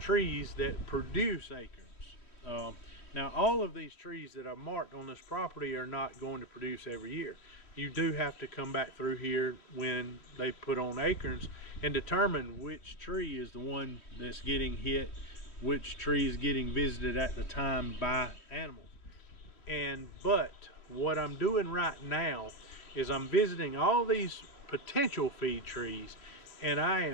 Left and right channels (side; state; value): right; late; 3.1 ms